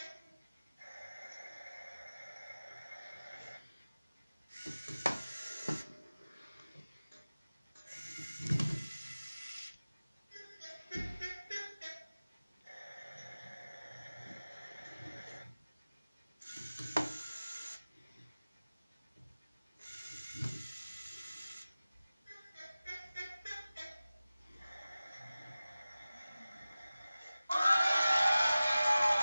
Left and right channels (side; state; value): both; inverted; correlation -0.97